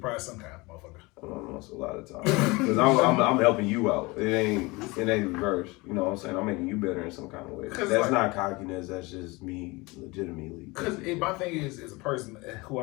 prize sometimes, motherfucker. That's a lot of times. Because I'm helping you out. It ain't reverse. You know what I'm saying? I'm making you better in some kind of way. That's not cockiness. That's just me legitimately. Because my thing is, as a person who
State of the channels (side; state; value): right; quieter; 24.1 dB